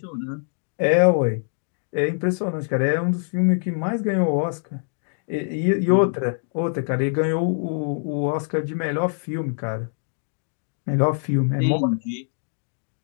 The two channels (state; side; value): silent; right; digital silence